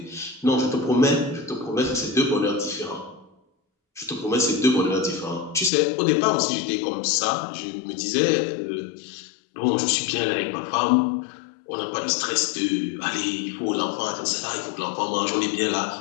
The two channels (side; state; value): right; drops out; at 5.7 s